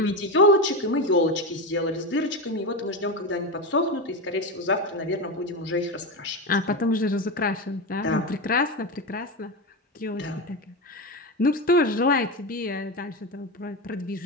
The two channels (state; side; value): normal; both; correlation 0.17